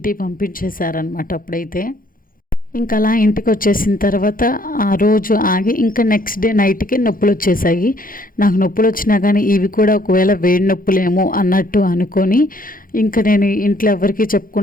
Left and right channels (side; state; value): right; late; 0.41 ms